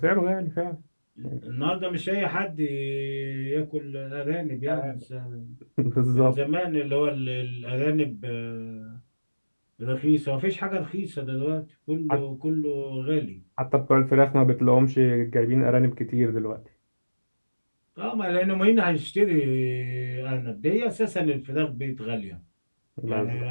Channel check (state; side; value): inverted; both; correlation -1.00